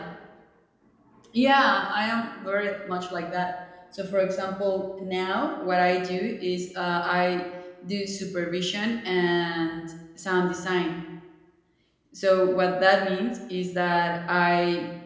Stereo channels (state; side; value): identical; both; correlation 1.00